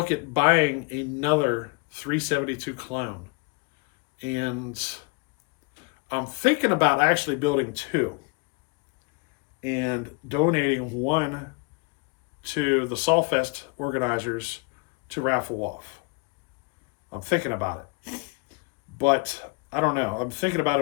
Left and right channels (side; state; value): right; quieter; 31.7 dB